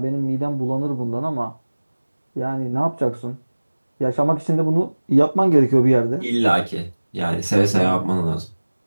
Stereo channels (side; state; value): both; inverted; correlation -1.00